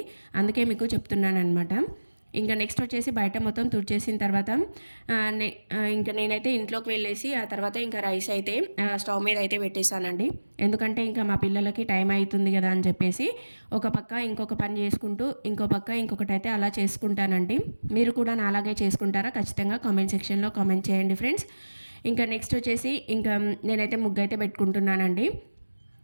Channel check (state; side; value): inverted; both; correlation -1.00